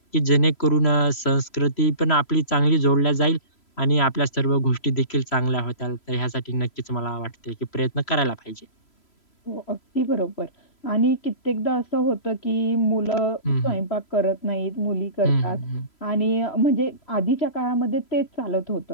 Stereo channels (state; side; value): late; right; 3.0 ms